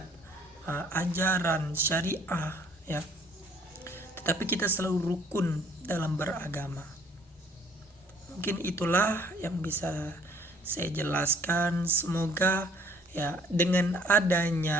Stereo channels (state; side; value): normal; both; correlation 0.59